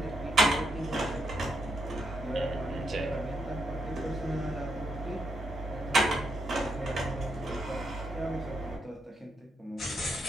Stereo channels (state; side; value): normal; both; correlation 0.80